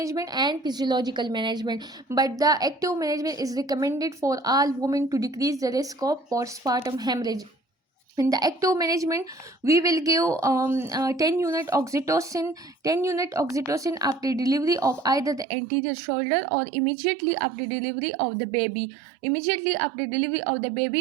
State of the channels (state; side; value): drops out; left; at 15.5 s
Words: and physiological management. But the active management is recommended for all women to decrease the risk of postpartum hemorrhage. In the active management, we will give 10 unit oxytocin 10 unit oxytocin after delivery of either the anterior shoulder, or immediately after delivery of the baby. Immediately after delivery of the